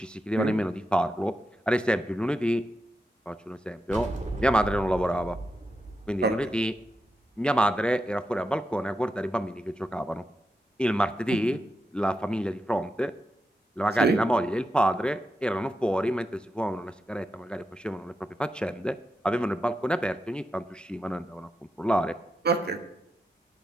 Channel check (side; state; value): both; normal; correlation 0.87